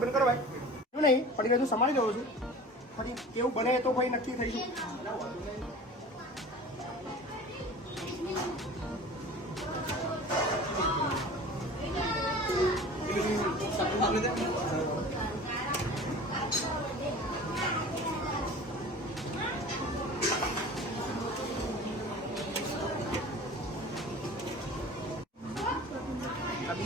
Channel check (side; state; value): both; normal; correlation 0.40